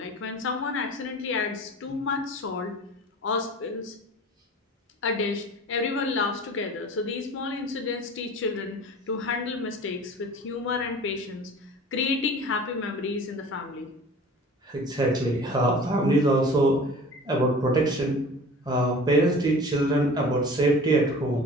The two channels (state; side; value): normal; both; correlation 0.41